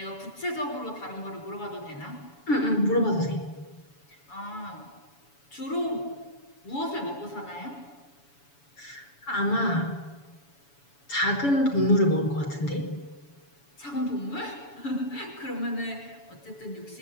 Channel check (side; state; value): right; late; 7.0 ms